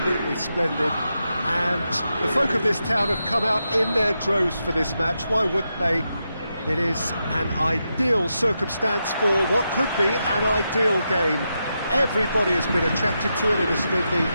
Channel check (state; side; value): inverted; both; correlation -0.86